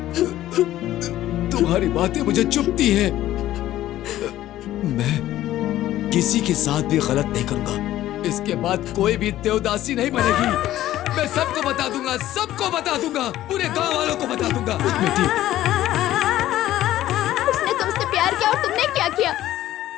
तुम्हारी बातें मुझे चुभती हैं। मैं किसी के साथ भी गलत नहीं करूंगा। इसके बाद कोई भी देवदासी नहीं बनेगी। मैं सबको बता दूंगा, सबको बता दूंगा, पूरे गांव वालों को बता दूंगा। बेटी, उसने तुमसे प्यार किया और तुमने क्या किया?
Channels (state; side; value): quieter; right; 14.0 dB